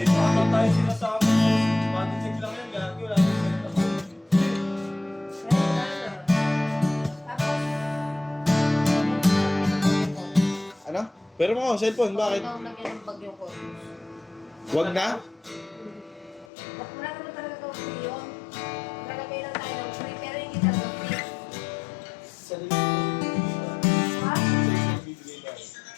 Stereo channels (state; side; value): drops out; right; at 16.4 s